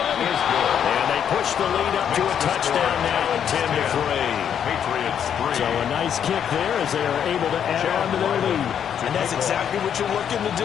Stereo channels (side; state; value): right; quieter; 8.7 dB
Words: And they push the lead up to a touchdown now at 10-3. Patriots 3. So a nice kick there as they are able to add on to their lead. And that's exactly what you're looking to